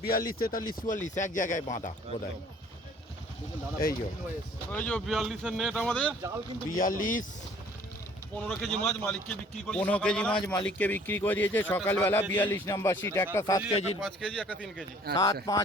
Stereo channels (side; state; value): both; normal; correlation 0.55